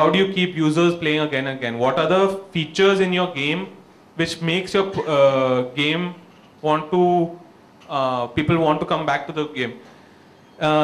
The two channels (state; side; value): identical; both; correlation 1.00